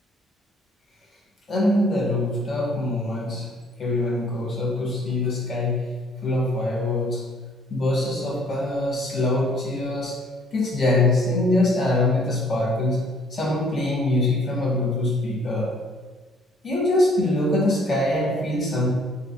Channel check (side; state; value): both; normal; correlation 0.59